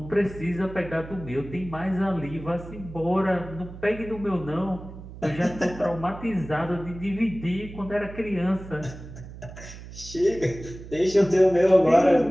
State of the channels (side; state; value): right; noise; hum, 14 dB below the sound